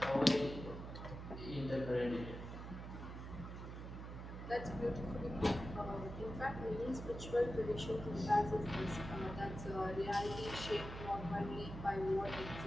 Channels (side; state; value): right; noise; hum, 8 dB below the sound